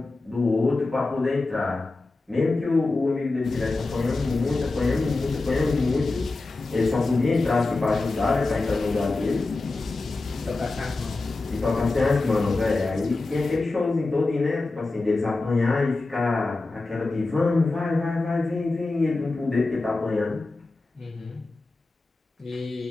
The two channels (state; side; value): quieter; right; 3.3 dB